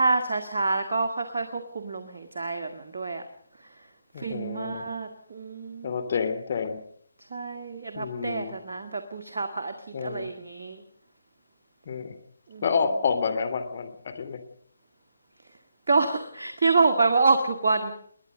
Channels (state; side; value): inverted; both; correlation -0.80